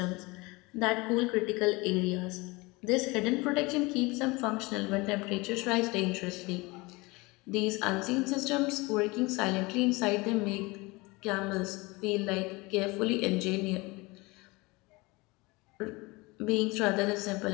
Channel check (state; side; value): quieter; right; 24.1 dB